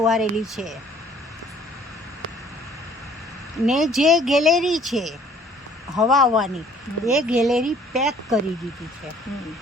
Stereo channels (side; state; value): both; normal; correlation 0.57